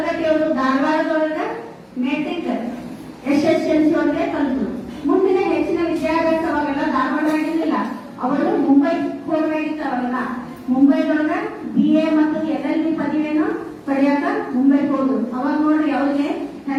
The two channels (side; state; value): both; identical; correlation 1.00